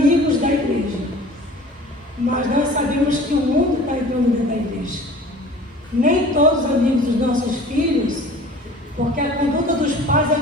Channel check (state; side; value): normal; both; correlation 0.45